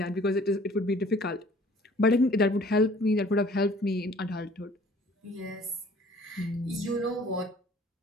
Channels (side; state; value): both; normal; correlation 0.53